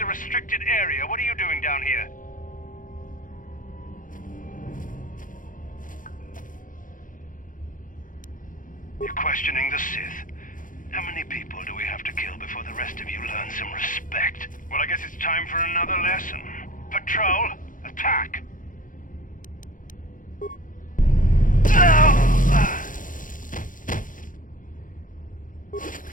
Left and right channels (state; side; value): late; right; 0.39 ms